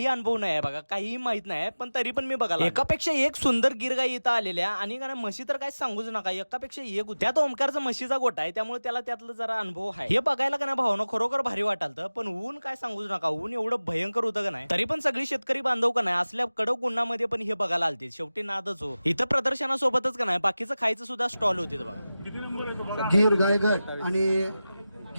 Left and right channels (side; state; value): both; inverted; correlation -0.96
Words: अनुभव नाही आहे बघा, काहीही माहित नाही, पण तरी पण मी बघायला एकापेक्षा एक सुंदर गिर गाई इथं आलेल्या आणि का म्हशी तर काय सांगूच नका, एकापेक्षा एक होती. त्यात ओमकारचा म्हशीचा गोटा आहे, त्यामुळे त्याला त्यातलं जरा अनुभव आहे. हे बघायला का नाही भावना खरोखर भारी वाटालतं, पण ऊन काय सांगूच नका, ऊन एवढं भयंकर होतं का नाही. तरी पण सगळी शेतकरी बांधव का नाही असल्या कडक उन्हामध्ये पण हे बघायला आलते. शेवटी नादच हो. इथं प्रदर्शनासोबतच का नाही बाकीचं खायचं सुद्धा स्टॉल होते बघा. गिर गाय गट आणि